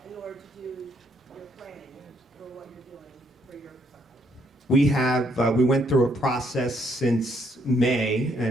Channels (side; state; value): both; normal; correlation 0.70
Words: in order to do your planning for what you're doing for your We have, we went through a process since May,